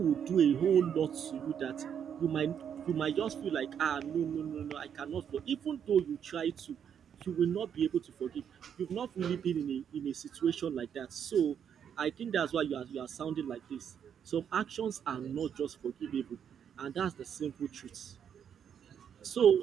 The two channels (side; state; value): left; quieter; 8.3 dB